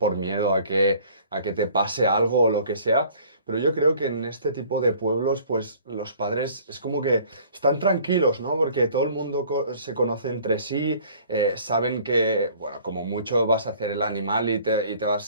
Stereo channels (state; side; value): inverted; both; correlation -0.52